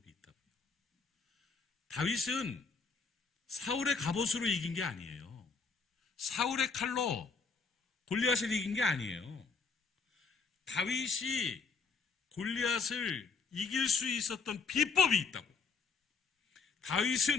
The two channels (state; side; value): quieter; right; 4.8 dB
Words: 있다고요. 다윗은 사울의 갑옷으로 이긴 게 아니에요. 사울의 칼로 골리앗을 이긴 게 아니에요. 다윗이 골리앗을 이길 수 있었던 비법이 있다고.